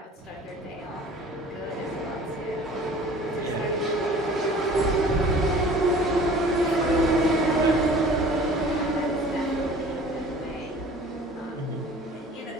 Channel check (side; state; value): both; normal; correlation 0.47